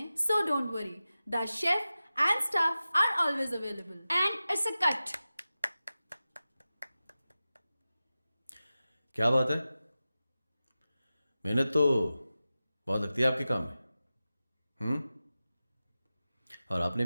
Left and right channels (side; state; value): both; inverted; correlation -0.95